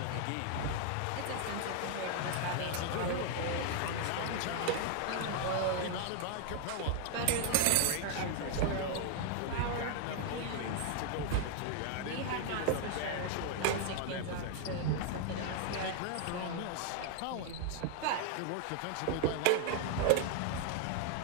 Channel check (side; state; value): both; different; correlation 0.00